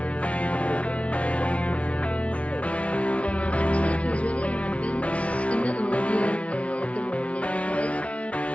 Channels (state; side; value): late; right; 0.063 ms